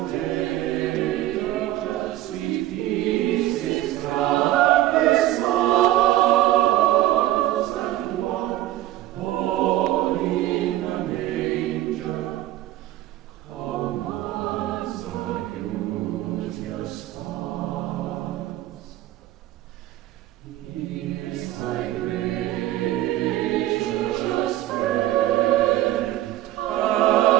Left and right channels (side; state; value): left; quieter; 14.9 dB